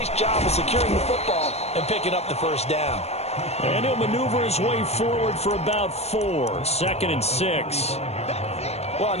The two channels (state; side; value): late; right; 0.31 ms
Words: job of securing the football and picking up the first down. And he'll maneuver his way forward for about 4. 2nd and 6. Well, on